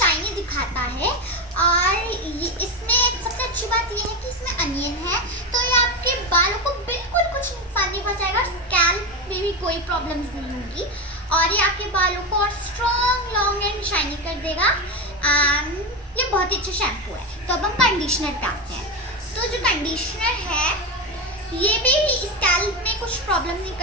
दिखाता है। और इसमें सबसे अच्छी बात ये है कि इसमें अनियन है, तो ये आपके बालों को बिल्कुल कुछ नुकसान नहीं पहुंचाएगा, स्कैल्प में भी कोई प्रॉब्लम्स नहीं होगी और ये आपके बालों को और स्ट्रॉन्ग, लॉन्ग एंड शाइनी कर देगा। ये बहुत ही अच्छा शैम्पू है। तो अब हम कंडीशनर पे आते हैं। तो जो कंडीशनर है ये भी स्कैल्प में कुछ प्रॉब्लम नहीं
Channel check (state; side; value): normal; both; correlation 0.16